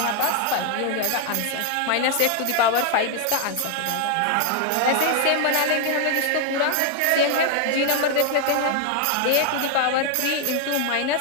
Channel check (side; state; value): both; different; correlation 0.00